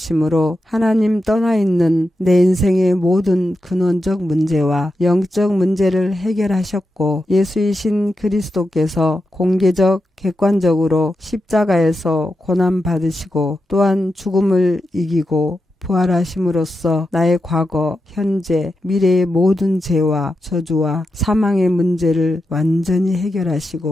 하나님 떠나 있는 내 인생의 모든 근원적 문제와 영적 문제를 해결하셨고, 예수이신 그리스도께서 공개적 객관적으로 십자가에서 고난 받으시고 또한 죽음을 이기고 부활하심으로써 나의 과거, 현재, 미래의 모든 죄와 저주와 사망의 문제를 완전히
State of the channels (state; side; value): normal; both; correlation 0.89